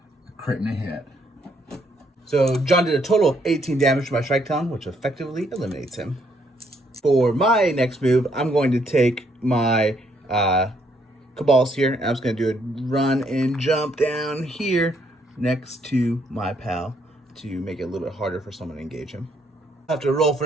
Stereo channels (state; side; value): normal; both; correlation 0.71